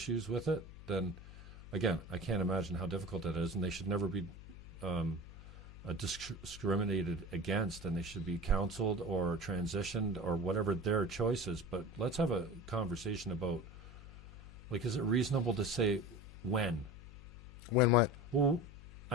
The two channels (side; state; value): left; noise; hum, 15 dB below the sound